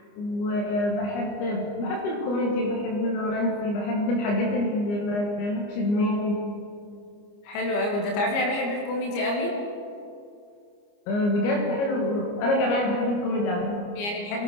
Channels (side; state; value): right; late; 29 ms